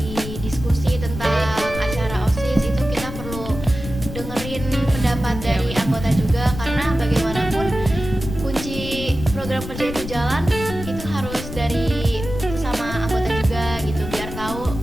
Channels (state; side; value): noise; left; rumble, 9 dB below the sound